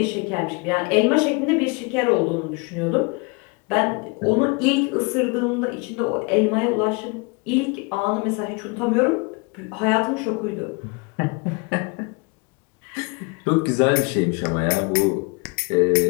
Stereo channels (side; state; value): right; quieter; 30.2 dB